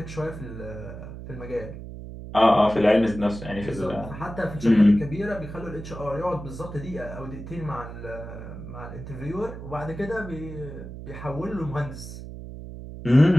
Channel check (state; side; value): noise; right; hum, 11 dB below the sound